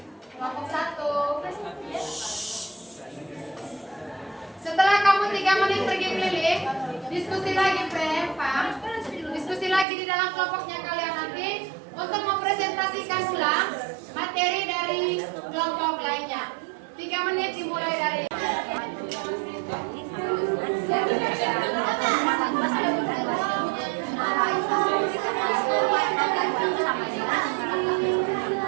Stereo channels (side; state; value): left; drops out; at 9.9 s